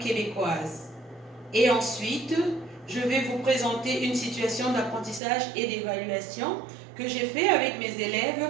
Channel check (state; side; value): drops out; left; at 5.2 s